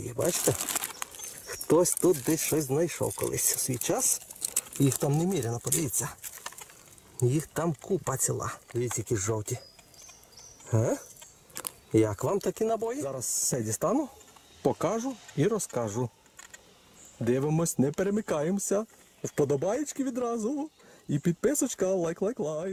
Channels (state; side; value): identical; both; correlation 1.00